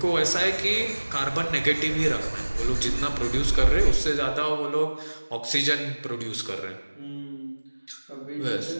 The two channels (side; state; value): both; inverted; correlation -1.00